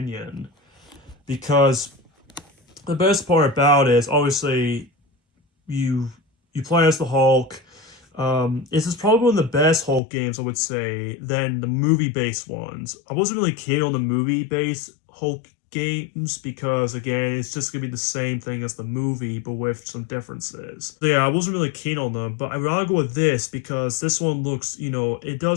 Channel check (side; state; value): right; drops out; at 10.0 s